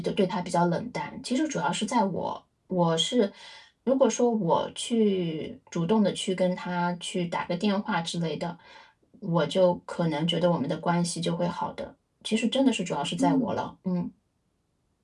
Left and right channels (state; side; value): identical; both; correlation 1.00